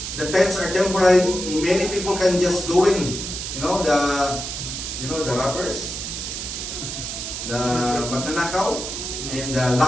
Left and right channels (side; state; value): right; noise; hiss, 6 dB below the sound